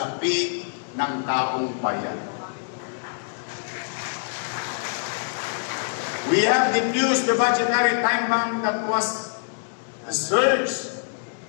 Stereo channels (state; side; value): silent; right; digital silence